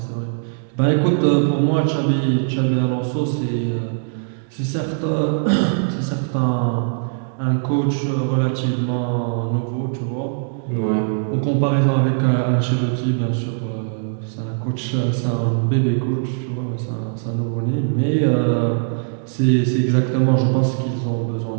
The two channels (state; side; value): silent; left; digital silence